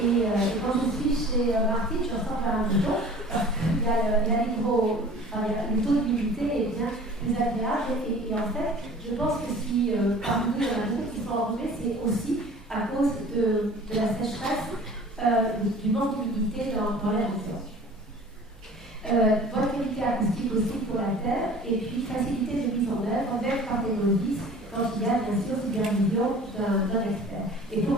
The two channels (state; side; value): normal; both; correlation 0.45